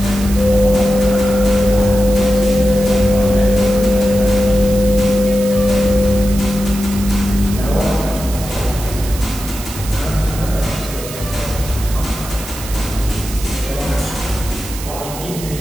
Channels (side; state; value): right; noise; hiss, 12 dB below the sound